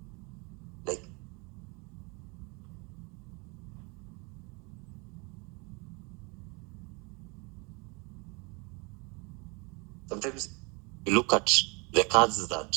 Like, sometimes you look at the cards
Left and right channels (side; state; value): left; quieter; 30.2 dB